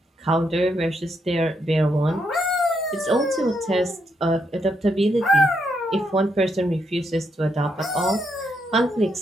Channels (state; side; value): normal; both; correlation 0.78